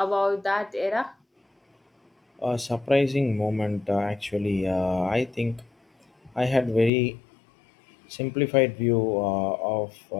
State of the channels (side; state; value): right; drops out; at 6.9 s